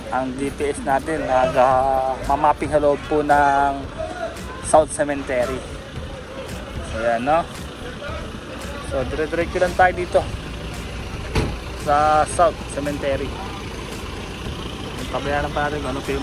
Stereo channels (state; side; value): identical; both; correlation 1.00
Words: ang GPS natin, mamapping sa loob po ng South Cemetery. So yan, no? So dire-diretso lang tayo dito sa South Cemetery. Pabayaran pa natin ano pa yung